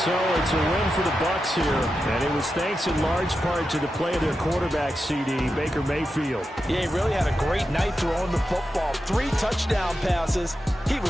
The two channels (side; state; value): both; normal; correlation 0.89